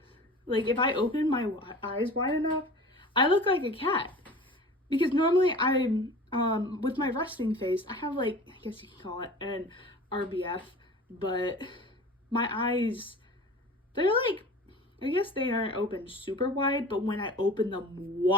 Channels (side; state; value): both; normal; correlation 0.39